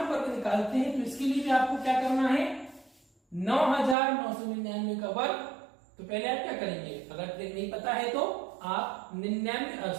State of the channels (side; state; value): left; drops out; at 4.0 s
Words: वर्ग निकालते हैं। तो इसके लिए भी आपको क्या करना है, 9999 का वर्ग। तो पहले आप क्या करेंगे, अगर ट्रिक नहीं पता है तो आप